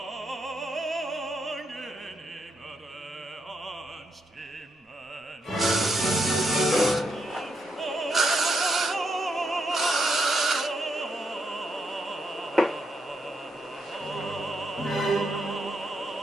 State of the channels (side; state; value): both; normal; correlation 0.79